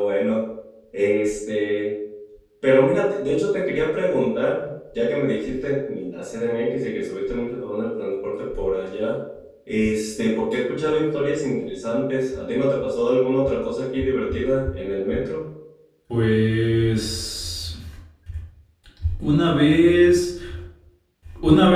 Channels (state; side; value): identical; both; correlation 1.00